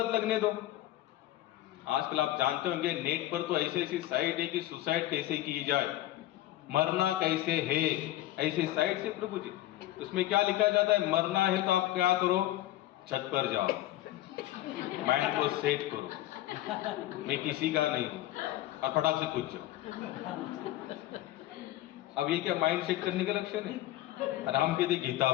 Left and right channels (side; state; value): right; quieter; 15.0 dB